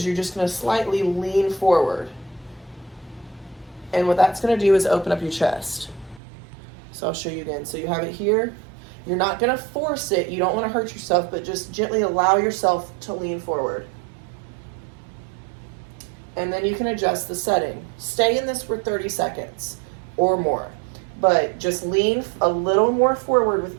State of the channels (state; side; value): drops out; left; at 6.2 s